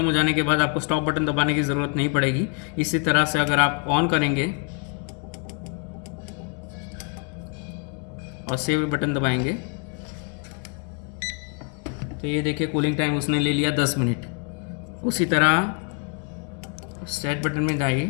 हो जाने के बाद आपको स्टॉप बटन दबाने की ज़रूरत नहीं पड़ेगी। इसी तरह से अगर आप ऑन करेंगे और सेव बटन दबाएंगे तो ये देखिए कूलिंग टाइम उसने ले लिया 10 मिनट। उसी तरह सेट बटन में जाइए,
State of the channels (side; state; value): right; quieter; 37.8 dB